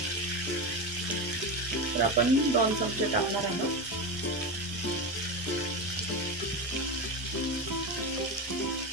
तर आपण 2 चमचे टाकणार आहोत.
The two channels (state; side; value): normal; both; correlation 0.18